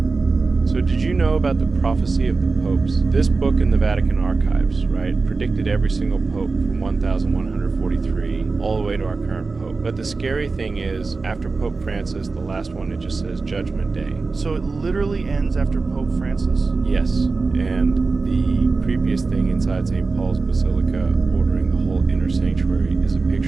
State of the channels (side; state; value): left; quieter; 4.1 dB